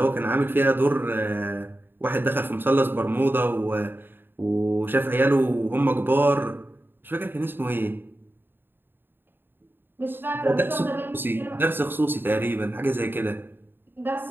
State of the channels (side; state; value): left; late; 0.098 ms